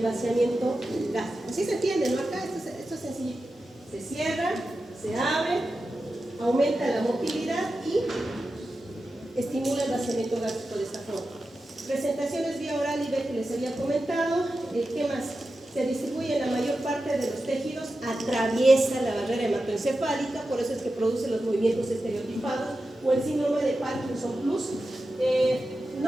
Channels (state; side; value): normal; both; correlation 0.92